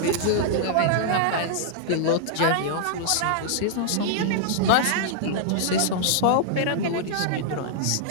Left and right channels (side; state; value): both; different; correlation -0.01